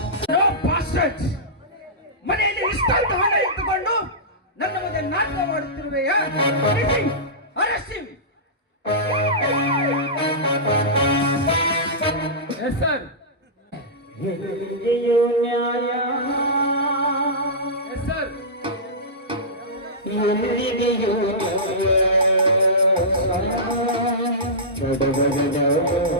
ಮನೆಯಲ್ಲಿ ಇಷ್ಟೊಂದು ಹಣ ಇಟ್ಟುಕೊಂಡು ನನ್ನ ಮುಂದೆ ನಾಟಕ ಮಾಡುತ್ತಿರುವೆಯಾ? ಸರ್, ಎಲ್ಲಿದೆಯೋ ನ್ಯಾಯ, ಸರ್, ಎಲ್ಲಿದೆಯೋ ನ್ಯಾಯ,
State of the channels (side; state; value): both; normal; correlation -0.16